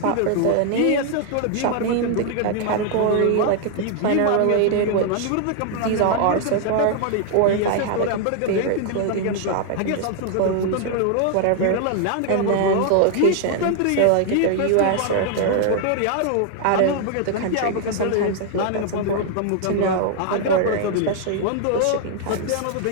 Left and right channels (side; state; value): both; different; correlation 0.00